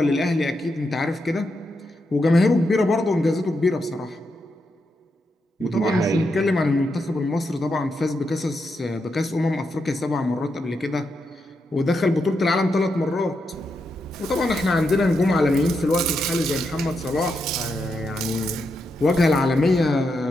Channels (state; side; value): normal; both; correlation 0.84